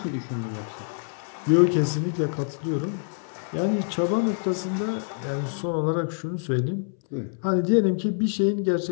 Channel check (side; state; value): right; silent; 61 dB below the other